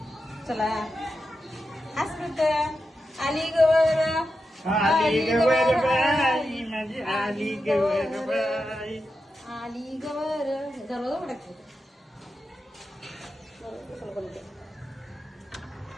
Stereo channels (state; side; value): normal; both; correlation 0.89